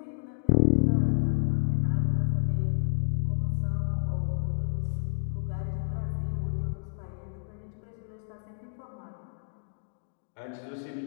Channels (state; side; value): silent; right; digital silence